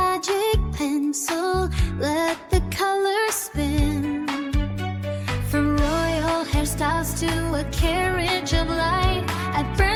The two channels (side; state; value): both; identical; correlation 1.00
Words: pencil, let the colors spin. From royal hairstyles to a carriage